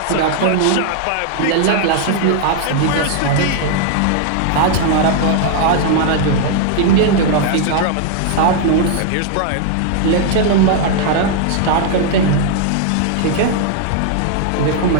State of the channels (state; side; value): different; both; correlation 0.00